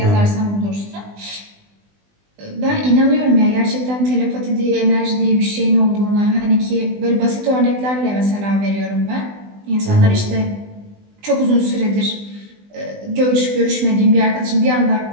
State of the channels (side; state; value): left; late; 20 ms